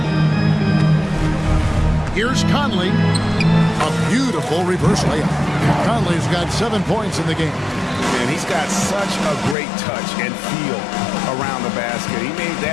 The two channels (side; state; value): right; drops out; at 9.6 s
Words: Here's Conley. A beautiful reverse layup. Conley's got 7 points in the game. And he's got such a great touch and feel around the basket. He made